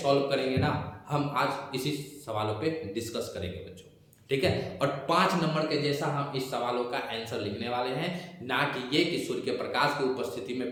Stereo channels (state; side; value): identical; both; correlation 1.00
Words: करेंगे ना, हम आज इसी सवालों पे डिस्कस करेंगे बच्चों। ठीक है, और 5 नंबर के जैसा हम इस सवालों का आंसर लिखने वाले हैं, ना कि ये कि सूर्य के प्रकाश की उपस्थिति में